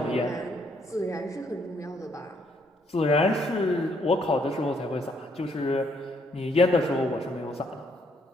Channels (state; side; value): normal; both; correlation 0.70